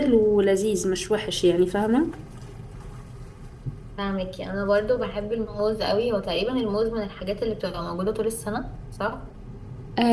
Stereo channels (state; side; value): identical; both; correlation 1.00